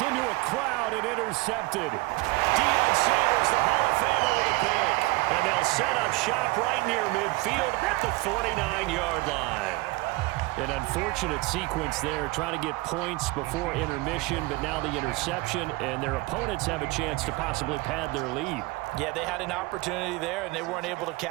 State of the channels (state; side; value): quieter; left; 22.4 dB